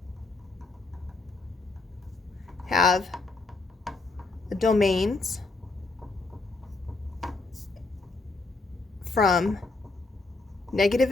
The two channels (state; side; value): quieter; right; 3.5 dB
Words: have domains from